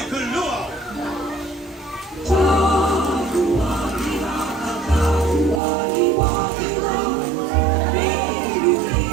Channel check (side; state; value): left; drops out; at 5.6 s